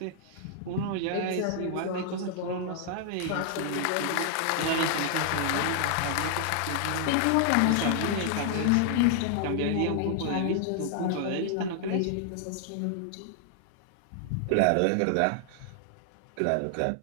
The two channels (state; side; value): different; both; correlation 0.00